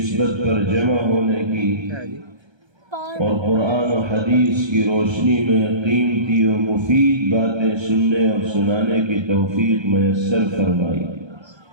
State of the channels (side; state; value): left; late; 1.3 ms